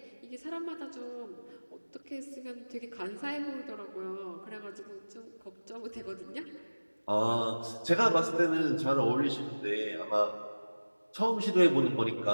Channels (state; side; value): inverted; both; correlation -1.00